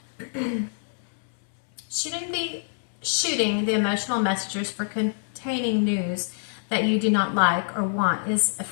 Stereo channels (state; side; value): silent; right; 61 dB below the other